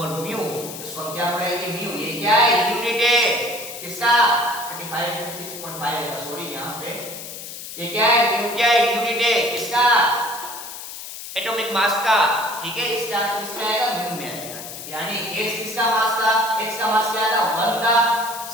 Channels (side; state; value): left; noise; hiss, 11 dB below the sound